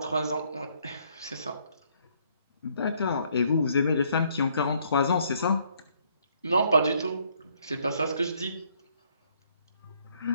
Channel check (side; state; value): both; inverted; correlation -0.67